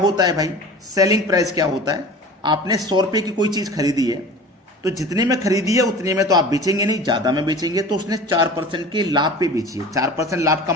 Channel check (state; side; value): normal; both; correlation 0.39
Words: है भाई? सेलिंग प्राइस क्या होता है? आपने 100 रुपये की कोई चीज़ खरीदी है, तो जितने में खरीदी है उतने में तो आप बेचेंगे नहीं, ज़्यादा में बेचेंगे। तो उसने 4% के लाभ पे बेची है, 4% लाभ